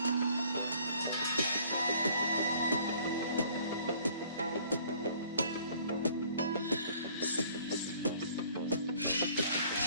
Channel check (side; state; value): both; inverted; correlation -0.57